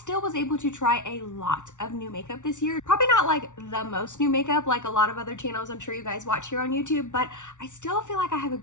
was able to try a lot of new makeup this year. Probably not like the most new makeup like a lot of other channels I'm sure you guys watch here on YouTube, but I still feel like I have a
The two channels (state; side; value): late; right; 0.86 ms